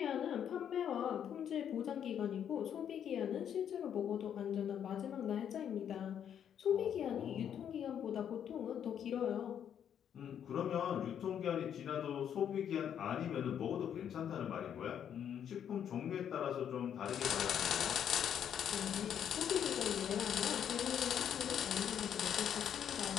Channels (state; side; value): quieter; right; 9.0 dB